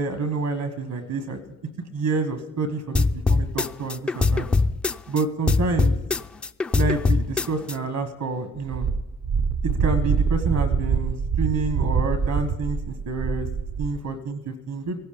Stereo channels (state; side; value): normal; both; correlation 0.60